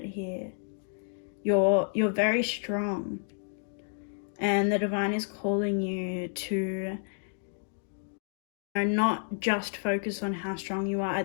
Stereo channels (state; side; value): silent; right; digital silence